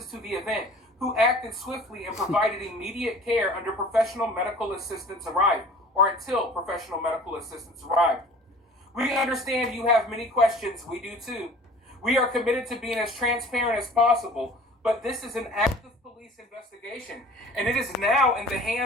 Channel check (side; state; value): both; normal; correlation 0.46